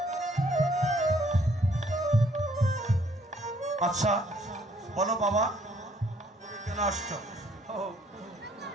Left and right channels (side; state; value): both; normal; correlation 0.64